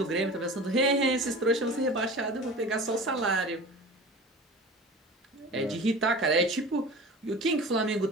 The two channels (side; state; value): both; normal; correlation 0.37